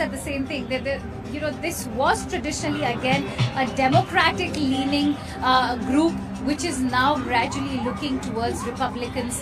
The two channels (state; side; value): identical; both; correlation 1.00